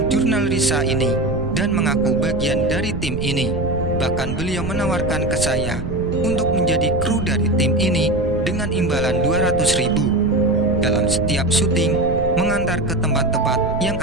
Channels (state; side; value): noise; right; rumble, 8 dB below the sound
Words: jurnal Risa ini dan mengaku bagian dari tim ini. Bahkan beliau menawarkan ke saya untuk menjadi kru dari tim ini dengan imbalan 200.000 dalam setiap syuting, mengantar ke tempat-tempat yang